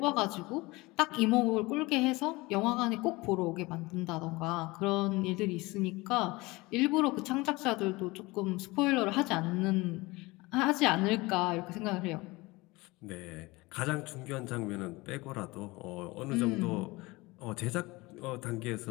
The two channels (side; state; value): right; quieter; 22.4 dB